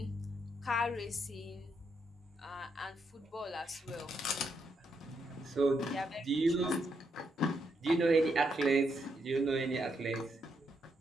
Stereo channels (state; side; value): normal; both; correlation 0.79